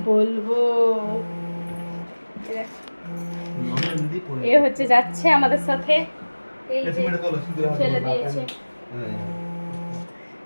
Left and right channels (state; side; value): inverted; both; correlation -1.00